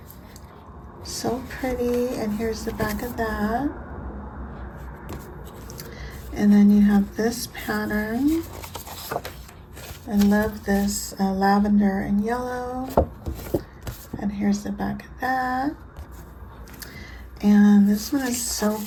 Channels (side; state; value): both; identical; correlation 1.00